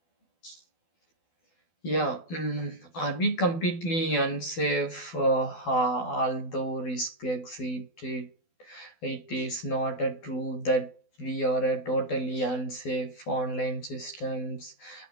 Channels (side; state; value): right; late; 12 ms